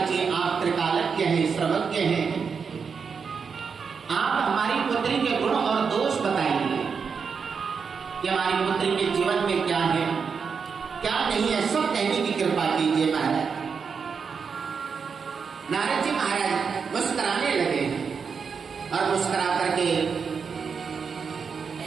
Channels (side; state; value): left; quieter; 5.9 dB